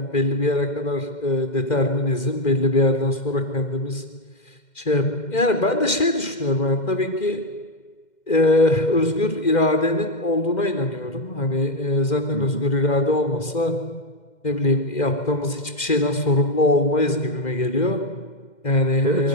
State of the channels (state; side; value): late; right; 2.1 ms